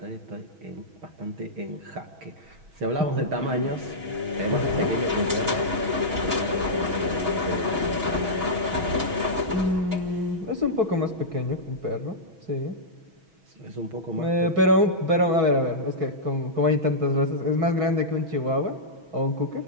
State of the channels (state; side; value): late; left; 6.2 ms